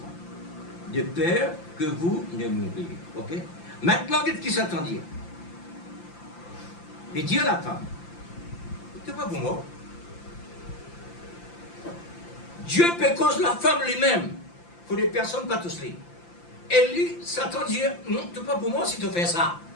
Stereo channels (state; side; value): late; right; 5.8 ms